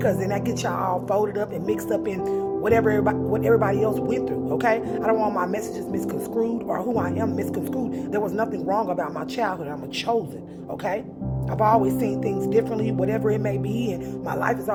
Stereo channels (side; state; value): both; identical; correlation 1.00